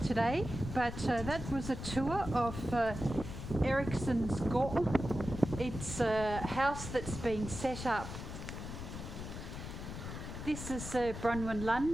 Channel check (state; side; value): noise; left; rumble, 8 dB below the sound